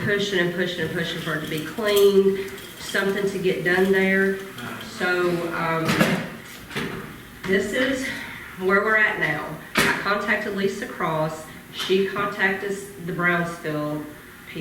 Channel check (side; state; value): both; identical; correlation 1.00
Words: and pushing and pushing for it to be clean, something to get done there. So this is where we're at now. I contacted Lisa Cross. She contacted the Brownsville